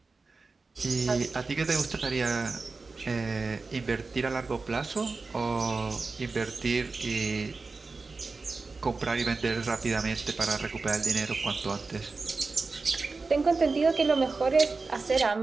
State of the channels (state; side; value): quieter; left; 4.0 dB